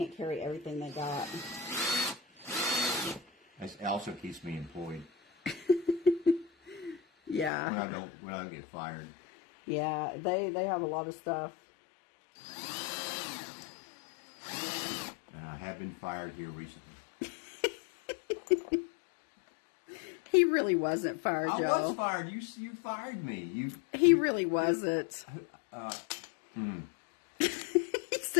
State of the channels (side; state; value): right; drops out; at 7.5 s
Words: carry everything they got. It also keeps me employed. Yeah. When I don't get fired. Yeah, they have a lot of stuff. And I have been fired here recently. He really wasn't fired, Joe. I was fired. You fired me. He really wasn't. He